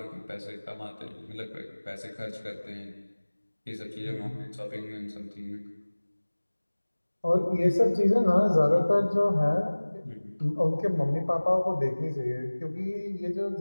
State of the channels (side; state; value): both; inverted; correlation -1.00